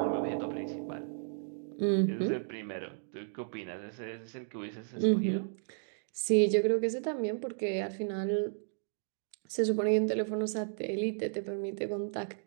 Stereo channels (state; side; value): silent; left; digital silence